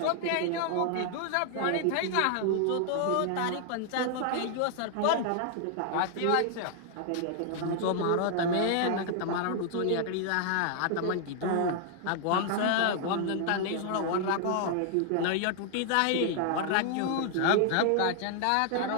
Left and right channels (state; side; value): different; both; correlation 0.00